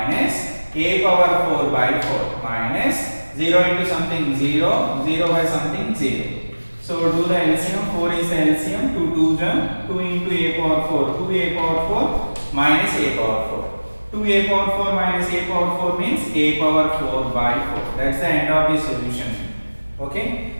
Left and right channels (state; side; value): inverted; both; correlation -1.00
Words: a power 4 by 4 minus 0 into something 0, 0 by something 0. So do the LCM. 4 is the LCM. 2 2 into a power 4, 2a power 4 minus a power 4. 2a power 4 minus a power 4 means a power 4 by 4. That's the end of the solution. Okay,